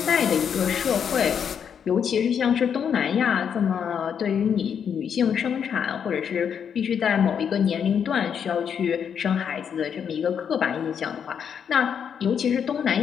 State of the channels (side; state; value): right; quieter; 7.7 dB